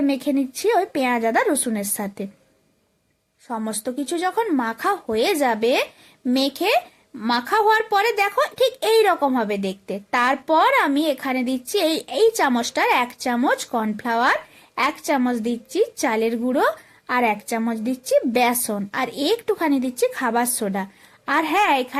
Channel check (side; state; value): both; identical; correlation 1.00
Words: মেখে নিচ্ছি ওই পেঁয়াজ, আদা, রসুনের সাথে। সমস্ত কিছু যখন মাখা হয়ে যাবে, মেখে মাখা হওয়ার পরে দেখো ঠিক এই রকম হবে দেখতে। তারপর আমি এখানে দিচ্ছি এই এই চামচটার 1 চামচ কর্নফ্লাওয়ার, 1 চামচ দিচ্ছি চালের গুঁড়ো, আর 1 চামচ দিচ্ছি বেসন, আর একটুখানি দিচ্ছি খাবার সোডা। আর হ্যাঁ,